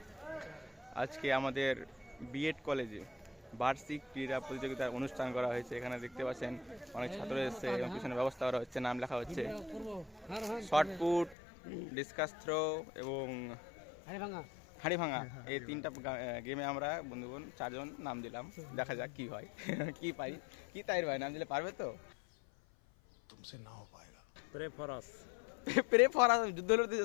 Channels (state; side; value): drops out; right; at 11.4 s